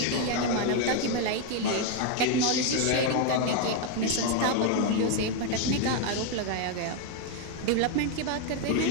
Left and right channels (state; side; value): different; both; correlation 0.01